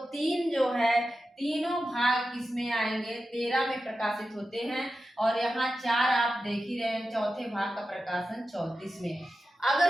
3 जो है तीनों भाग किसमें आएंगे, 13 में प्रकाशित होते हैं। और यहाँ 4 आप देख ही रहे हैं, चौथे भाग का प्रकाशन 34 में।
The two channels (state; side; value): normal; both; correlation 0.92